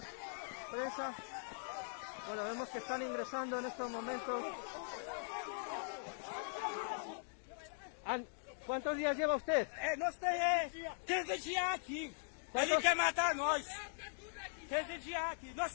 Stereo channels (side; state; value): right; silent; digital silence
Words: prensa. Bueno, vemos que están ingresando en estos momentos. ¿Cuántos días lleva usted? Nós temos 15 dias aqui. Ele quer matar nós. 15 dias aqui. Nós